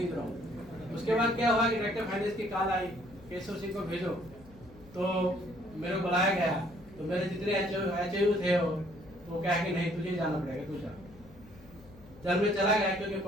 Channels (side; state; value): left; noise; hum, 22 dB below the sound